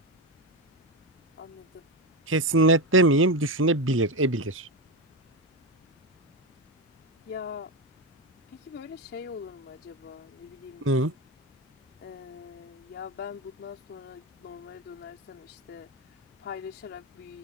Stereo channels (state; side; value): normal; both; correlation 0.13